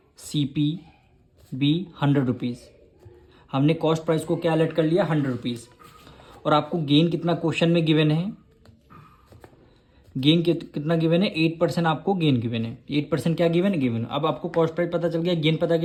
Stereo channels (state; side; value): identical; both; correlation 1.00